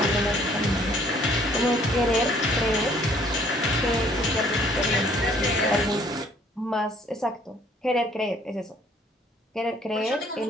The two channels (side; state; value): both; normal; correlation 0.60